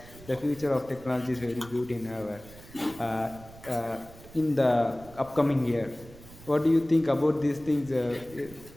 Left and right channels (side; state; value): right; noise; rumble, 19 dB below the sound